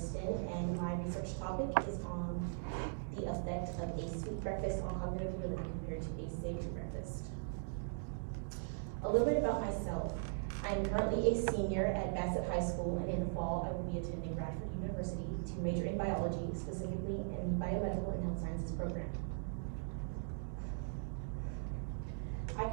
and my research topic is on the effect of a sweet breakfast on cognitive ability compared to a savory breakfast. A little bit about myself. I'm currently a senior at Bassett High School, and in the fall, I will be attending Bradford University to major in biology, specifically in the biomedical and health sciences program. I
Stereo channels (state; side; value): silent; left; digital silence